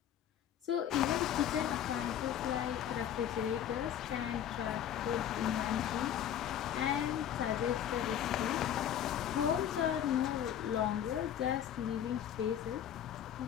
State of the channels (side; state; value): right; quieter; 10.0 dB